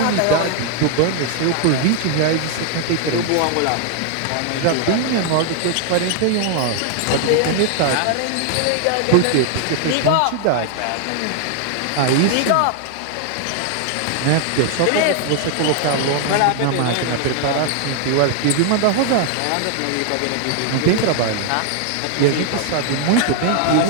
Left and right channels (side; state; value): both; different; correlation 0.00